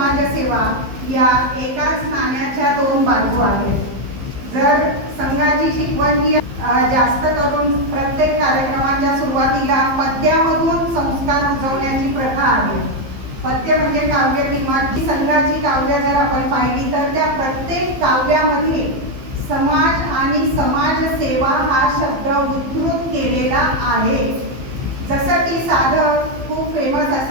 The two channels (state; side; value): late; left; 15 ms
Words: या एकाच नाण्याच्या 2 बाजू आहेत. जर संघाची शिकवण ही जास्त करून प्रत्येक कार्यक्रमाच्या सुरुवातीला पद्यामधून संस्कार रुजवण्याची प्रथा आहे. पद्य म्हणजे काव्य किंवा संघाची काव्य जर आपण पाहिली तर त्या प्रत्येक काव्यामध्ये समाज आणि समाजसेवा हा शब्द उद्धृत केलेला आहे. जसं की साधं खूप फेमस